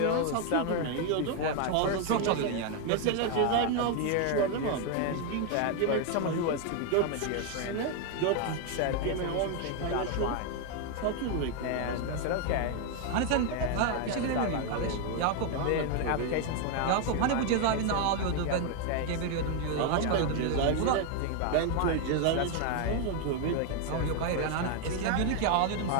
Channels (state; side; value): different; both; correlation 0.01